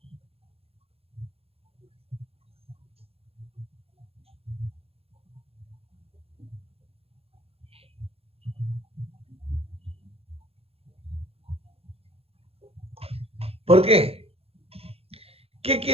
¿Por qué? ¿Qué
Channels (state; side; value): late; left; 0.29 ms